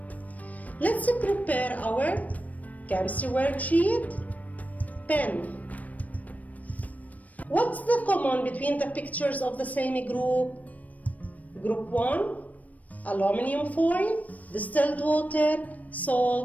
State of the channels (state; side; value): late; right; 0.072 ms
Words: Let's prepare our chemistry worksheet. Pen. What's the common between the pictures of the same group? Group 1, aluminum foil, distilled water,